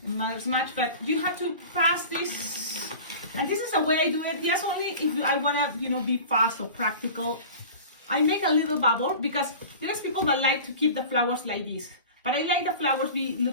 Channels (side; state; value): both; inverted; correlation -0.37